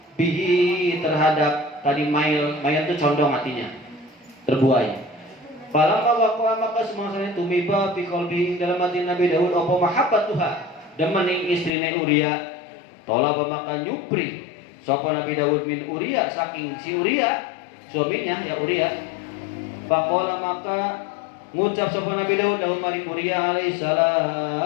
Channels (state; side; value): drops out; right; at 11.7 s